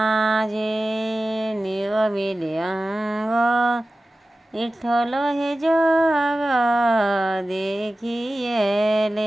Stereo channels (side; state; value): both; normal; correlation 0.95